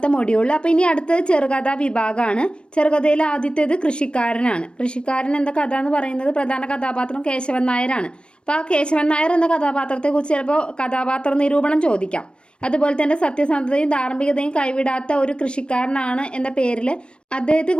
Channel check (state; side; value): late; right; 0.056 ms